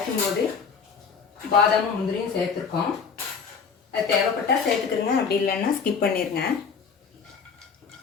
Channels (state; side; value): quieter; right; 5.9 dB